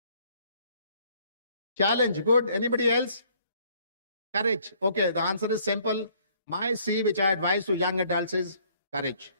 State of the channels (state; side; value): inverted; both; correlation -0.62